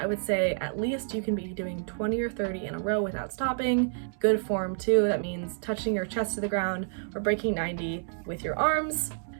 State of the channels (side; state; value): left; silent; digital silence